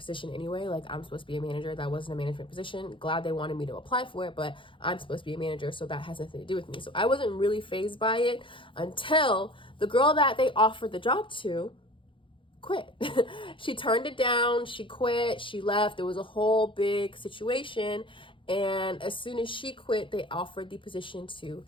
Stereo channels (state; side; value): late; right; 0.25 ms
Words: anyway. Like, I'm supposed to be a manager. That wasn't a management position. Glad they wanted me to apply for it, but I'm supposed to be a manager, so that has nothing to do with me. So I wasn't really fazed by it until the girl that they offered the job to quit. She turned it down. She quit. She left. There was a whole big situation. And as soon as she quit, they offered the position to